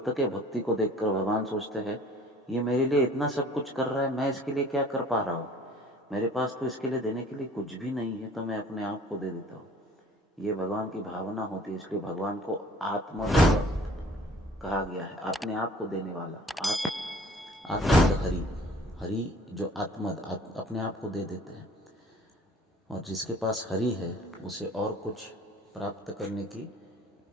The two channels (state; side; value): normal; both; correlation 0.51